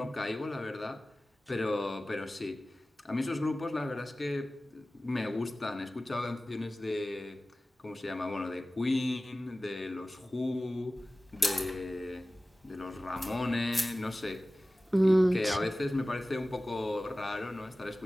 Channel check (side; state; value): both; normal; correlation 0.96